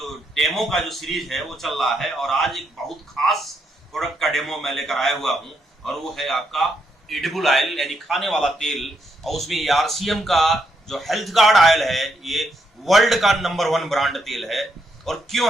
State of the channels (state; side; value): normal; both; correlation 0.78